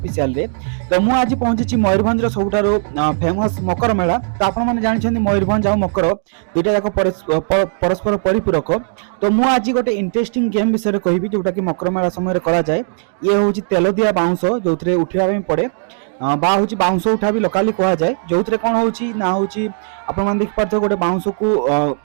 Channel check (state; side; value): silent; left; digital silence